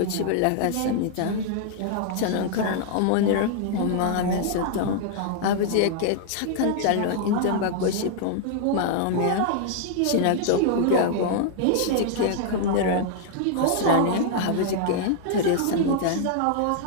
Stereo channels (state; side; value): different; both; correlation -0.01